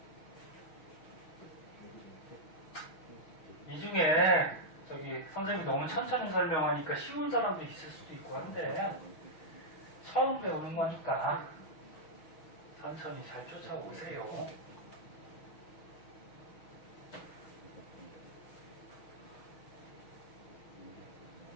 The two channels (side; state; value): right; late; 6.3 ms